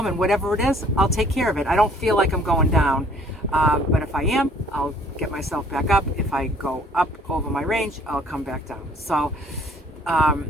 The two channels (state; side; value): normal; both; correlation 0.57